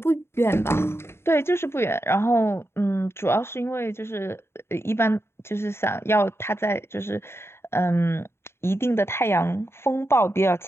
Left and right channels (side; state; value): right; late; 0.12 ms